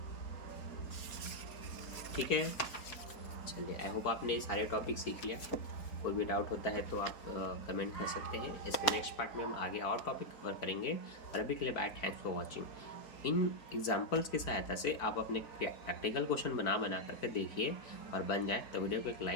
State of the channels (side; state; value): right; late; 4.3 ms